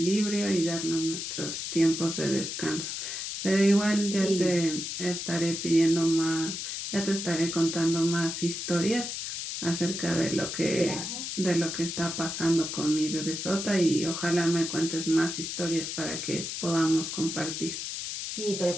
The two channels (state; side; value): noise; left; hiss, 5 dB below the sound